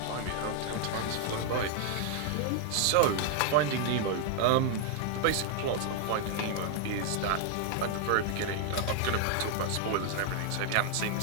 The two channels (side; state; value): both; different; correlation 0.00